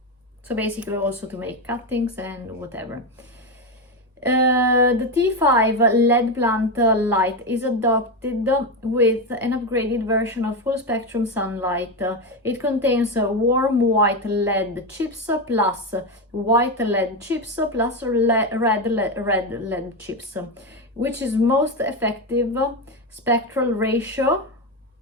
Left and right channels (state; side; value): normal; both; correlation 0.12